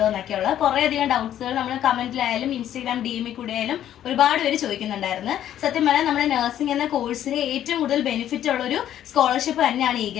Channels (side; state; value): right; quieter; 11.2 dB